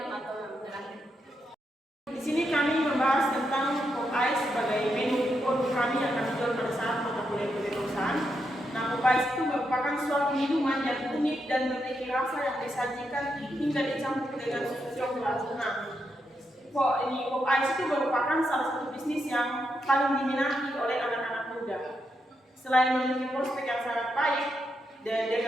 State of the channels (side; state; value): both; normal; correlation 0.82